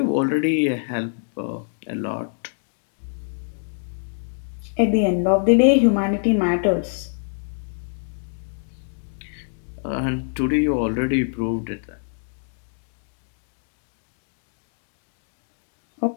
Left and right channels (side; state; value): right; silent; digital silence